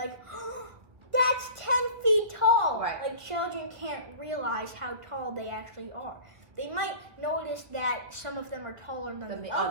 oh, that's 10 feet tall. Right. Like, children can't realize how tall they actually are. They might notice that some of them are taller than the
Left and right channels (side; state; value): left; late; 1.5 ms